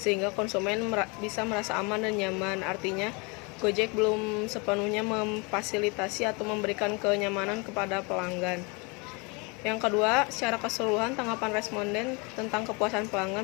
konsumen bisa merasa aman dan nyaman. Artinya Gojek belum sepenuhnya memfasilitasi atau memberikan kenyamanan kepada pelanggan. Yang kedua, secara keseluruhan tanggapan responden tentang kepuasan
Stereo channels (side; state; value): right; quieter; 29.9 dB